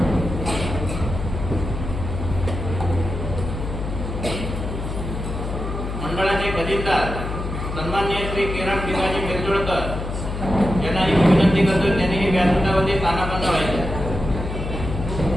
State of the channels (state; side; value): noise; left; hum, 5 dB below the sound